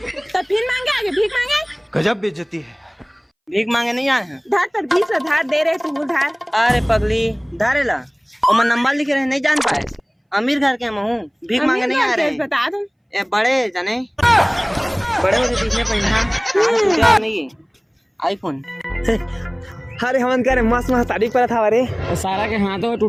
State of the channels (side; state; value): both; identical; correlation 1.00